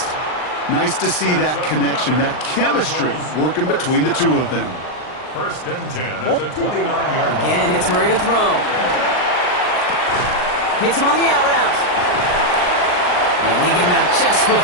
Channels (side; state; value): right; late; 39 ms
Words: Nice to see that connection, that chemistry working between the two of them. First and 10 at the 29-yard line. Again, it's Murray to throw. Hits him on the out route. And they get him out just